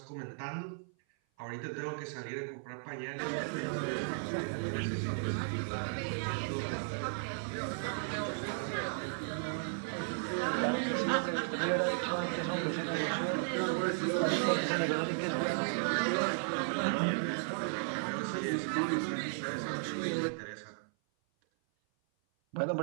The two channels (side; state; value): left; silent; 54 dB below the other